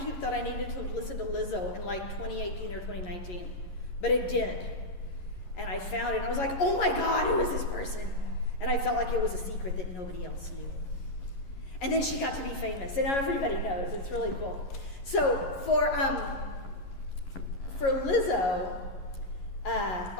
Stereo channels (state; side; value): late; right; 11 ms